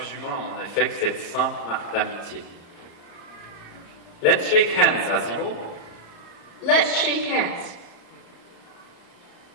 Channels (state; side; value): late; right; 34 ms